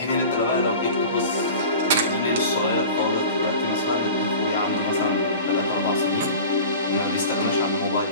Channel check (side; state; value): both; inverted; correlation -0.37